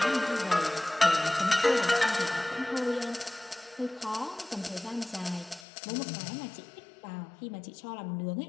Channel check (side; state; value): right; drops out; at 5.7 s